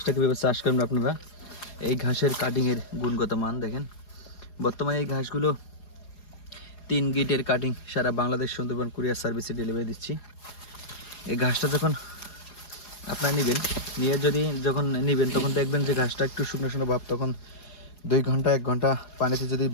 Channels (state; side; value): late; right; 4.8 ms